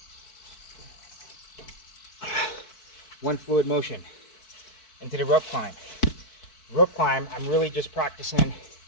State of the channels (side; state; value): right; late; 4.6 ms